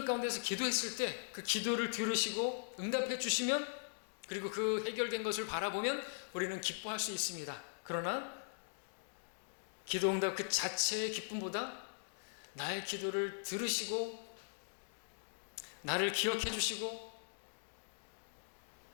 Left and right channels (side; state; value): right; silent; digital silence